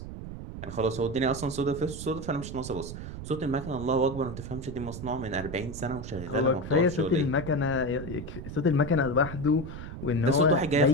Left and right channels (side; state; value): right; noise; rumble, 9 dB below the sound